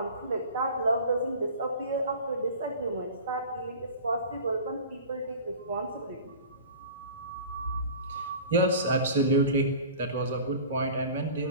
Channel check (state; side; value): inverted; both; correlation -0.39